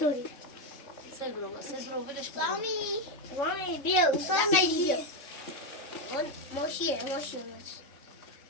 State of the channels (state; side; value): late; right; 3.6 ms